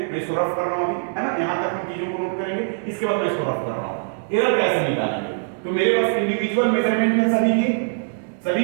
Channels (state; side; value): silent; left; digital silence